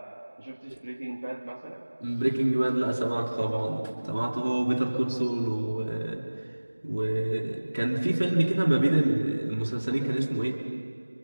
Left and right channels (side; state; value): both; inverted; correlation -1.00